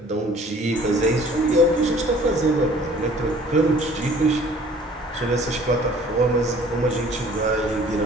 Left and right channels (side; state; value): both; normal; correlation 0.52